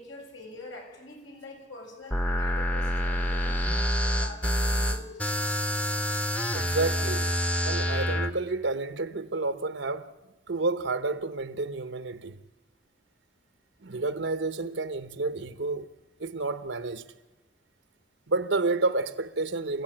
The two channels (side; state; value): both; normal; correlation 0.25